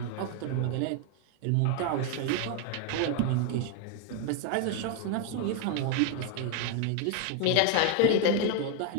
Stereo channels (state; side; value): different; both; correlation 0.01